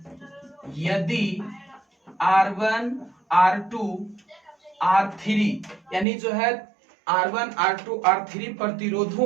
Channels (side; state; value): left; drops out; at 6.1 s